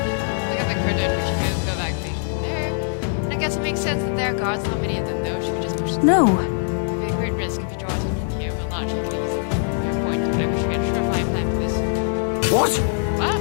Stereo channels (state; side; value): silent; right; digital silence